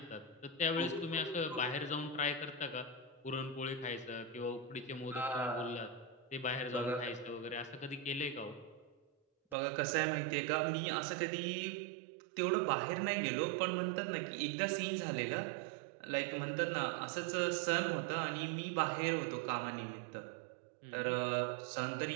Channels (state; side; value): drops out; left; at 9.6 s